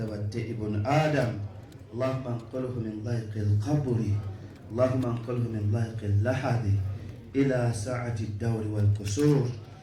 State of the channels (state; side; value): identical; both; correlation 1.00